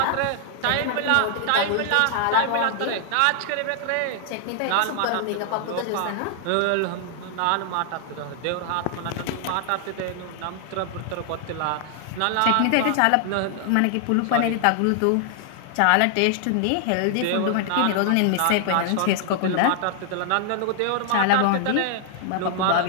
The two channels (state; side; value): different; both; correlation 0.00